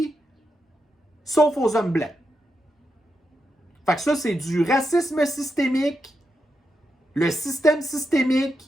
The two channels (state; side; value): normal; both; correlation 0.85